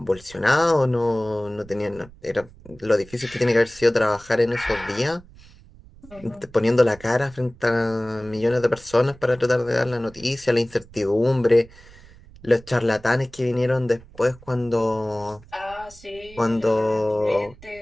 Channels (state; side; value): noise; right; rumble, 22 dB below the sound